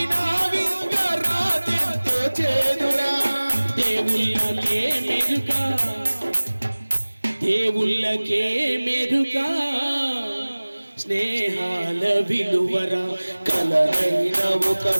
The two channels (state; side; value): inverted; both; correlation -1.00